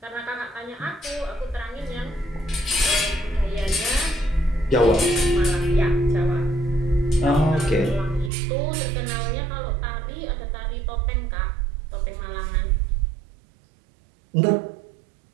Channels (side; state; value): left; drops out; at 8.3 s